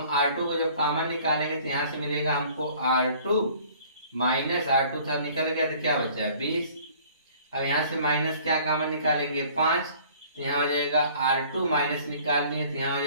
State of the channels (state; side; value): inverted; both; correlation -0.53